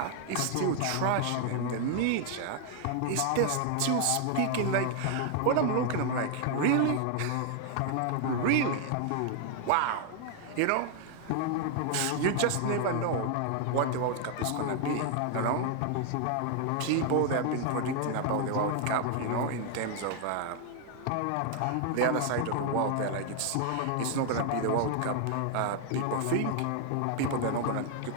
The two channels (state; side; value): different; both; correlation 0.00